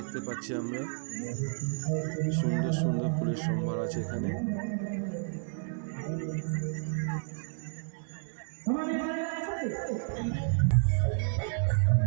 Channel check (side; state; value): left; silent; 57 dB below the other